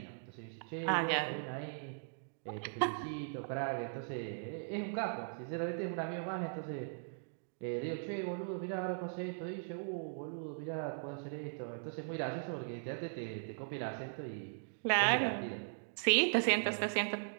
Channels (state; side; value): silent; left; digital silence